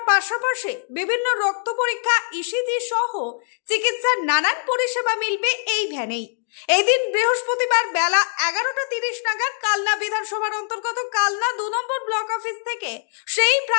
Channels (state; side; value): silent; right; digital silence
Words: পাশাপাশি বিভিন্ন রক্ত পরীক্ষা, ইসিজি সহ চিকিৎসার নানান পরিষেবা মিলবে এই ভ্যানেই। এদিন বৃহস্পতিবার বেলা 11:30 নাগাদ কালনা বিধানসভার অন্তর্গত কালনা 2 নম্বর ব্লক অফিস থেকে সেই